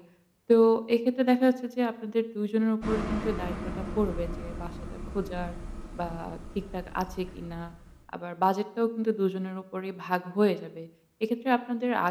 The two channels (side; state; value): both; identical; correlation 1.00